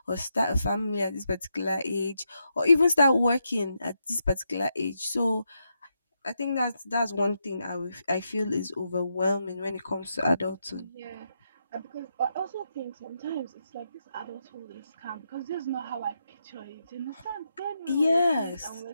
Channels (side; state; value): both; inverted; correlation -0.82